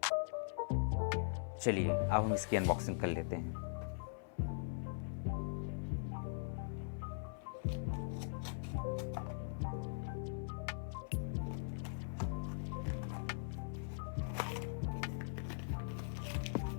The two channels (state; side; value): silent; right; 50 dB below the other